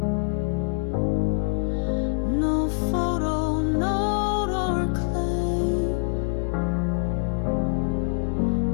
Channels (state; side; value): silent; right; 62 dB below the other